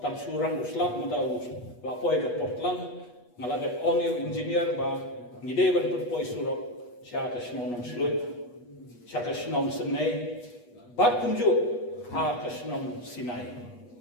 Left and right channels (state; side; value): late; right; 8.3 ms